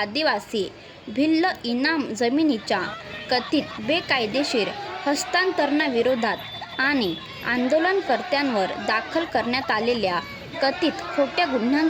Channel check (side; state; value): both; identical; correlation 1.00